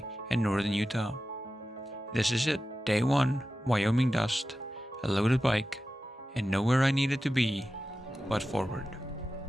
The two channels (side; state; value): both; normal; correlation 0.93